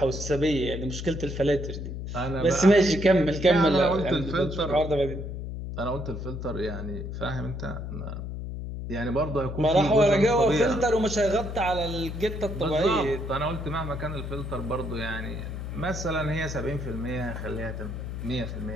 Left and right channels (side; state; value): left; noise; hum, 6 dB below the sound